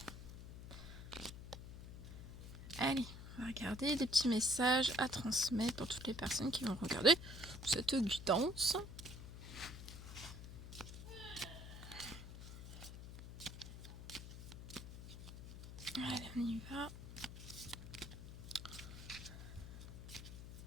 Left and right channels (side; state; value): left; noise; hum, 11 dB below the sound